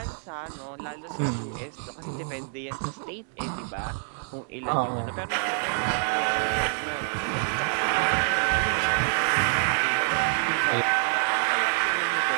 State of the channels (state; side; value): silent; left; 60 dB below the other